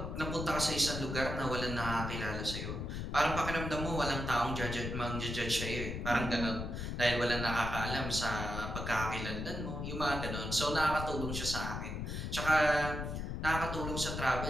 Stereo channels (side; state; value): left; noise; rumble, 4 dB below the sound